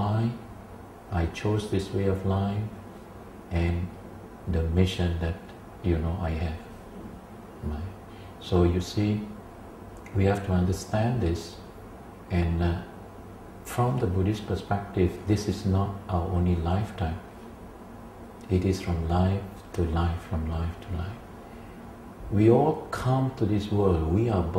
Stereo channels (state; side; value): identical; both; correlation 1.00